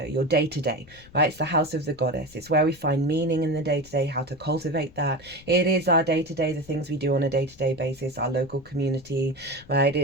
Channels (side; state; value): left; noise; rumble, 23 dB below the sound